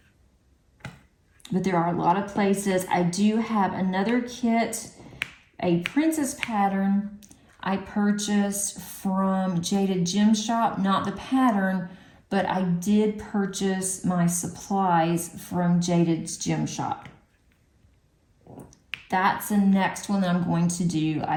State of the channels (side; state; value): both; identical; correlation 1.00